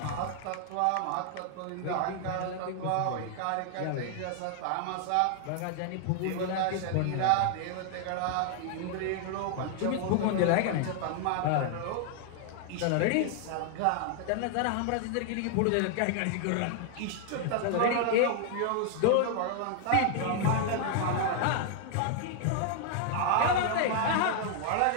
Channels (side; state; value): both; different; correlation 0.00